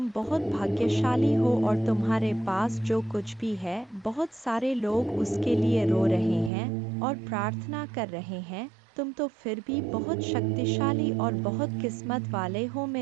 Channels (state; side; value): drops out; left; at 6.5 s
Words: बहुत भाग्यशाली हो और तुम्हारे पास जो कुछ भी है, बहुत सारे लोग उसके लिए रो रहे हैं और प्रार्थना कर रहे हैं, तुम तो फिर भी बहुत शक्तिशाली और बहुत किस्मत वाले हो